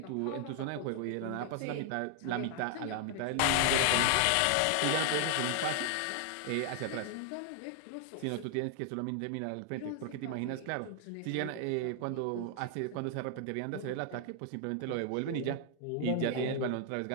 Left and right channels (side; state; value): both; different; correlation 0.00